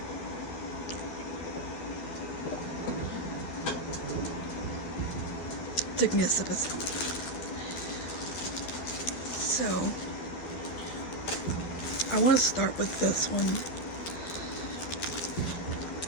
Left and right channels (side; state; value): right; late; 12 ms